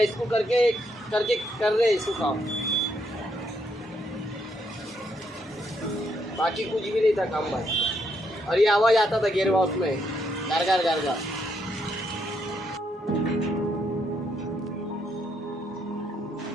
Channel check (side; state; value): both; normal; correlation 0.75